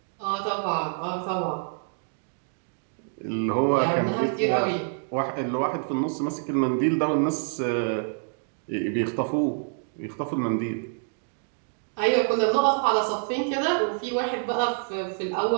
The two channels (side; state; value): left; silent; 56 dB below the other